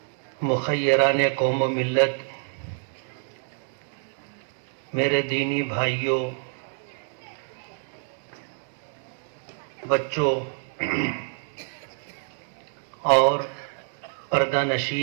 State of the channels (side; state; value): left; silent; 60 dB below the other